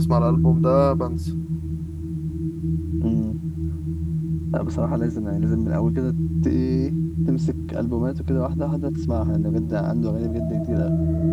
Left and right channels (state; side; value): identical; both; correlation 1.00